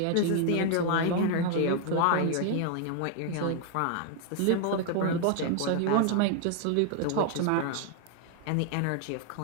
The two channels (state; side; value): different; both; correlation 0.00